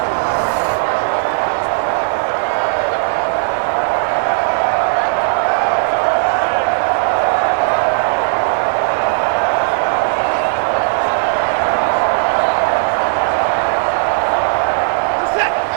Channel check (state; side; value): silent; left; 65 dB below the other